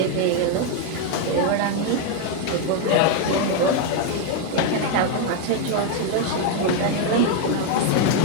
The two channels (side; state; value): both; different; correlation 0.01